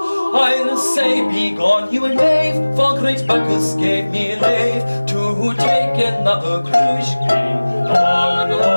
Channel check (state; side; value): inverted; both; correlation -1.00